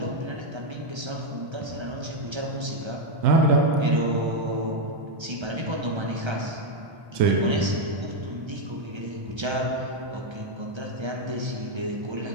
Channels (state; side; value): late; left; 1.3 ms